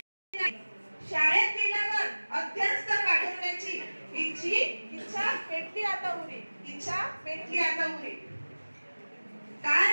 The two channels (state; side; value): inverted; both; correlation -1.00